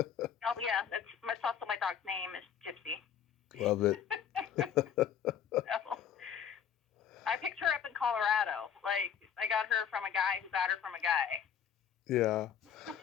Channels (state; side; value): quieter; right; 8.5 dB